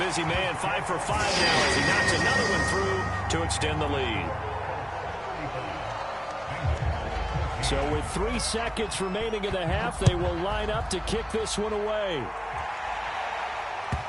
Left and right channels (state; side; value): identical; both; correlation 1.00